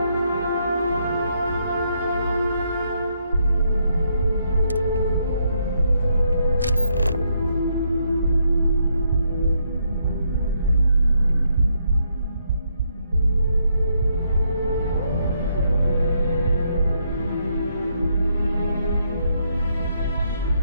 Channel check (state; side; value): inverted; both; correlation -0.75